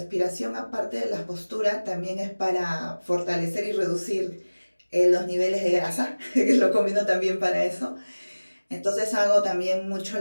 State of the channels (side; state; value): both; inverted; correlation -1.00